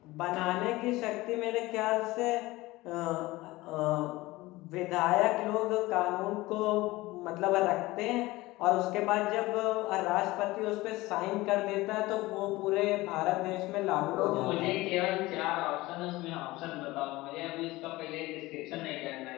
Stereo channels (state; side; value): quieter; right; 19.6 dB